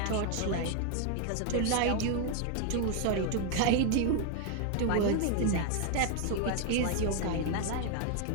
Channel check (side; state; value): both; different; correlation 0.00